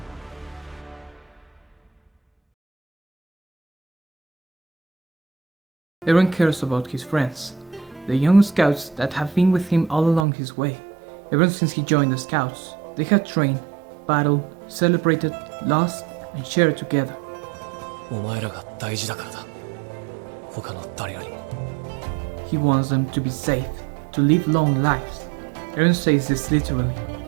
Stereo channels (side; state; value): left; drops out; at 10.2 s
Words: Eren cares about his friends, the young scouts that have been with him all along his way. Ever since he joined the scouts, they had trained, battled, celebrated, lost, and shared together. お前らが大事だからだ。他の誰よりも。 He wants them to be safe, to live long lives. Eren says this literally.